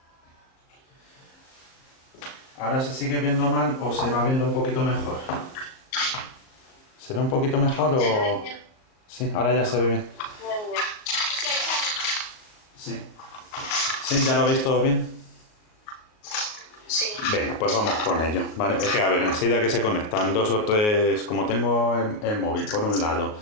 ¿Ahora se sigue viendo mal o se va viendo un poquito mejor? ¿Se ve un poquito mejor o...? Sí, ahora ya se ve bien. Sí. ¿Sí? ¿Ya lo veis todo bien? Sí. Venga, pues vamos con ello. Vale, es que a ver, enseguida que se conectan 2 o 3, como tengo el móvil por un lado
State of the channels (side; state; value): right; late; 38 ms